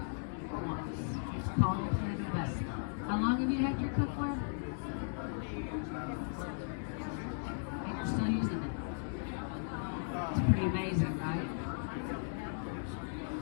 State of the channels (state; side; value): silent; right; digital silence